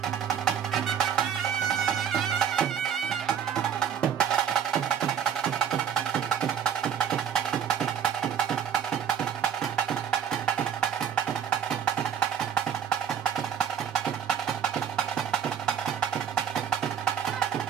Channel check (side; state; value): left; quieter; 8.4 dB